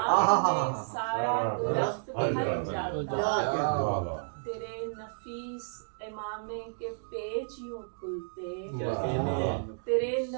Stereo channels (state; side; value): silent; left; digital silence